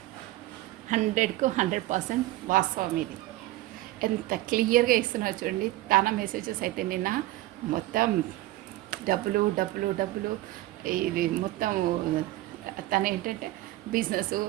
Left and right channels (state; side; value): quieter; left; 16.9 dB